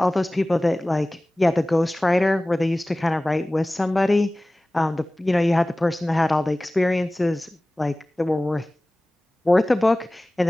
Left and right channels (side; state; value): both; normal; correlation 0.98